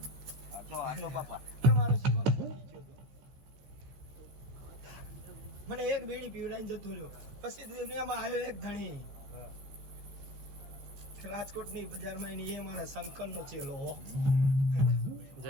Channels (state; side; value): late; left; 15 ms